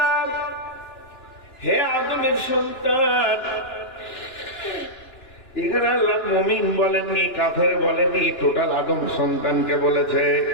হে আদমের সন্তান। এখানে আল্লাহ মুমিন বলেননি, কাফের বলেননি, টোটাল আদম সন্তানকে বলেছে।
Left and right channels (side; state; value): right; late; 2.9 ms